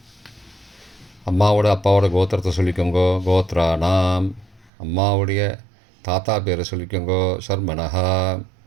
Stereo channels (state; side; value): drops out; left; at 4.7 s